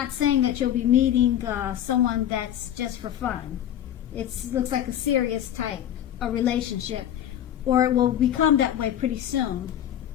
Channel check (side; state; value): right; quieter; 11.0 dB